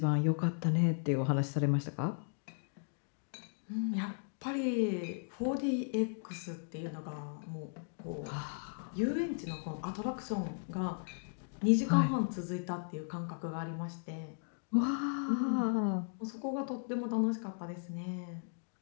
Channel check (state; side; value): silent; right; digital silence